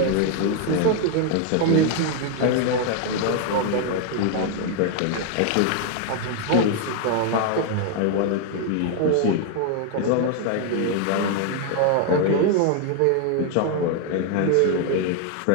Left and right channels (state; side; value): different; both; correlation 0.00